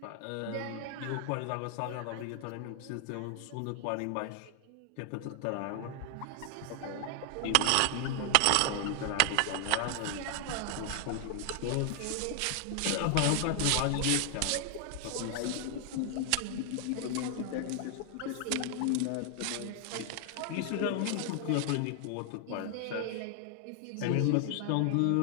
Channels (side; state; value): both; different; correlation 0.00